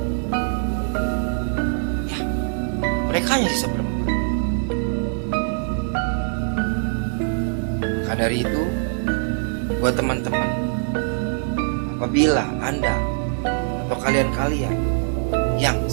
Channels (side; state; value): left; silent; digital silence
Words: Ya, mereka hanya sisa berempat. Maka dari itu, buat teman-teman, apabila Anda atau kalian-kalian yang